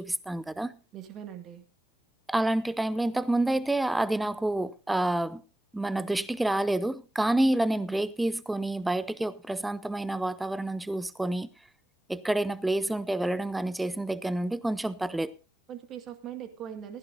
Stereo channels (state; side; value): normal; both; correlation 0.96